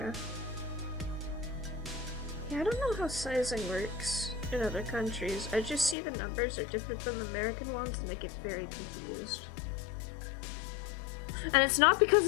Yeah, I don't know how sizing works in other countries. I just see the numbers are different than the American ones and I get very confused. And it's not because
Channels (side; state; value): right; drops out; at 6.0 s